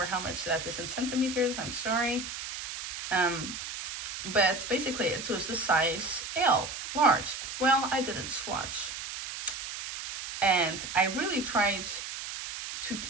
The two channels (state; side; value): noise; right; hiss, 7 dB below the sound